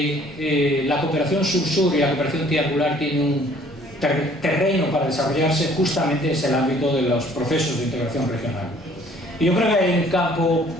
la cooperación sur-sur y la cooperación triangular tienen un terreno para desarrollarse, justamente es el ámbito de los procesos de integración regional. Y yo creo que hay un campo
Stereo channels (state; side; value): normal; both; correlation 0.57